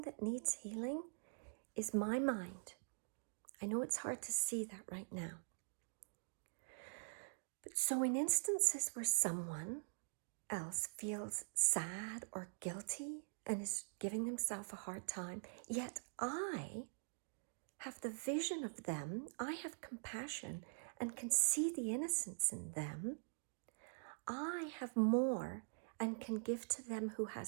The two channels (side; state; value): left; silent; digital silence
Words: that needs healing is my mind. I know it's hard to see that right now. But so in instances where someone else feels sad or guilty and is giving themselves a hard time, yet I have the vision of them, I have compassion and can see the innocence in them, I have more and can give to them who